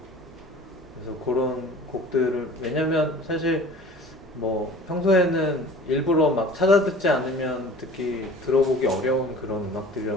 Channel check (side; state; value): both; normal; correlation 0.44